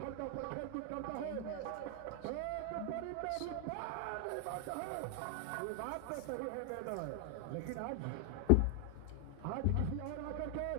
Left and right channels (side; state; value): both; different; correlation 0.00